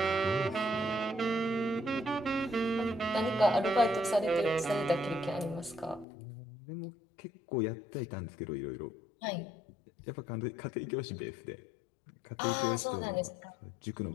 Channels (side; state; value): right; drops out; at 6.1 s